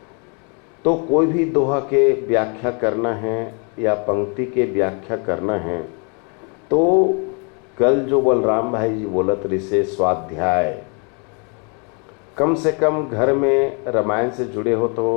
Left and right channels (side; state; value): right; quieter; 36.4 dB